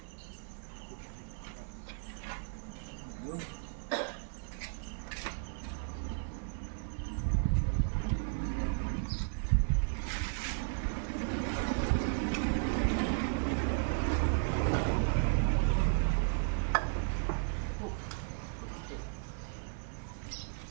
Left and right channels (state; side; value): silent; left; 54 dB below the other